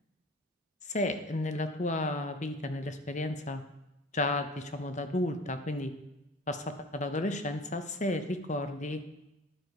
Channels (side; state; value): both; normal; correlation 0.41